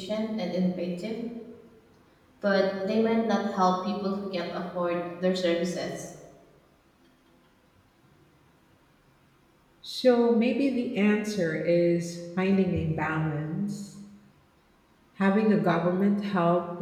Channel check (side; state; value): both; identical; correlation 1.00